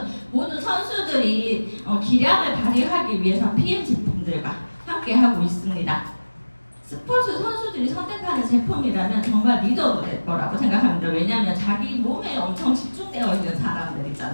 모든 선수들이 기량을 발휘하기 위해서 PM 제품들과 함께 하고 있습니다. 스포츠 선수들이 선택하는 제품이라면 정말 믿어도 될 거라고 생각합니다. 왜냐하면 자기 몸에 엄청 집중되어 있는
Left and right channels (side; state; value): both; inverted; correlation -1.00